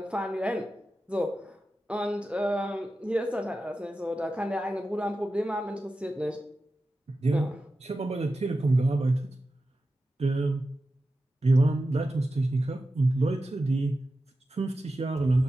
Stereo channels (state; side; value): normal; both; correlation 0.92